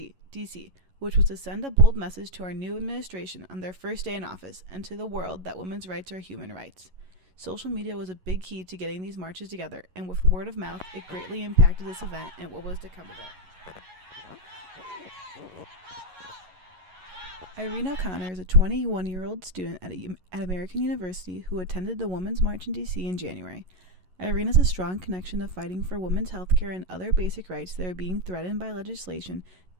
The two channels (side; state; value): left; late; 11 ms